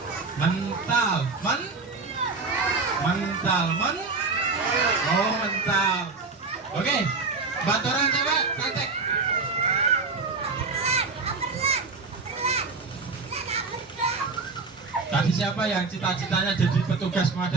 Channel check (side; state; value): left; quieter; 4.2 dB